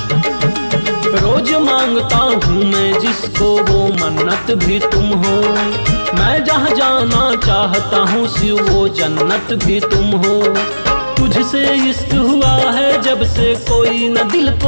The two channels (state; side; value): inverted; both; correlation -1.00